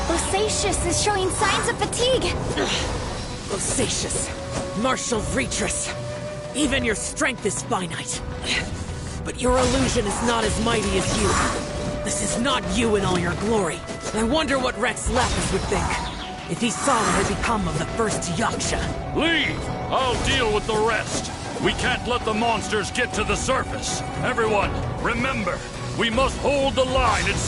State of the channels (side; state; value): both; identical; correlation 1.00